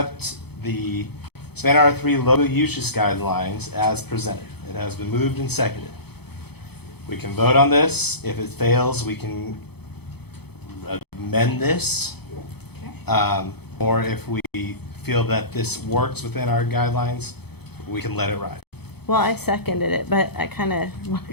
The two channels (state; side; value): late; right; 0.98 ms